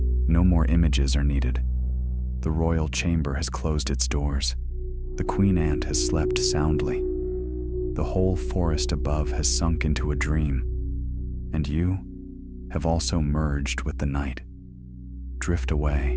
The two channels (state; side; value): identical; both; correlation 1.00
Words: No more images are needed. The royal chamber has closed its doors. The queen ant has slept soundly. The whole forest above has sunk into a dream. And you have also merged with the night. Drift